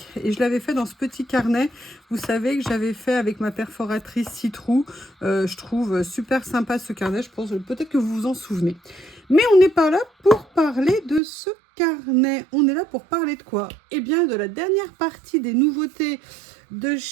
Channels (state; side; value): drops out; left; at 11.2 s